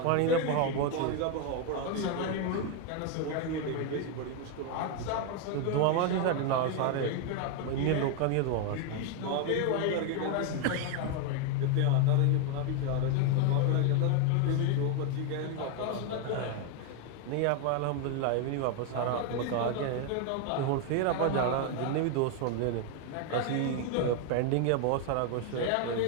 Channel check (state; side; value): different; both; correlation 0.01